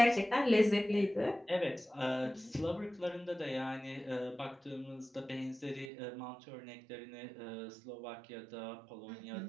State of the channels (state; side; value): drops out; left; at 5.9 s